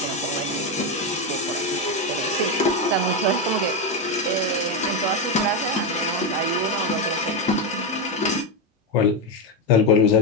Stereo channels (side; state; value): both; normal; correlation 0.09